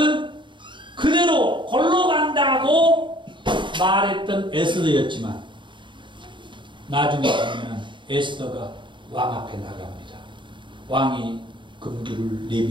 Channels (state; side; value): late; left; 0.23 ms